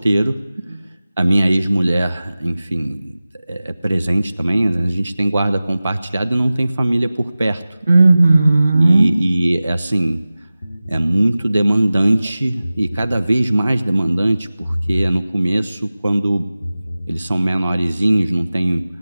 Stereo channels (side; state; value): both; inverted; correlation -0.97